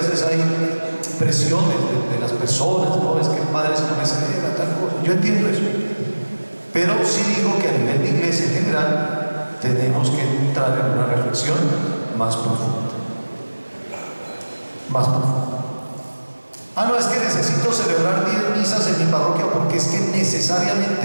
hay presiones de las personas, no, es que el padre se no me celebra tal cosa. Yo entiendo eso. Pero sí digo que a nivel de iglesia en general tenemos que entrar en una reflexión más profunda. Más profunda. No, es que necesito celebrar 10 misas en mi parroquia porque es que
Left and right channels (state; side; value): inverted; both; correlation -1.00